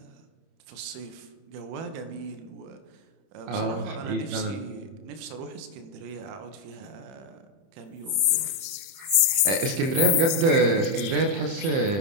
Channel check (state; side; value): late; left; 30 ms